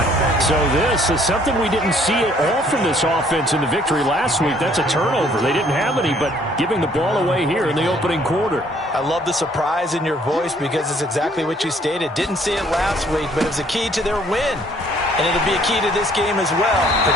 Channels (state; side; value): normal; both; correlation 0.62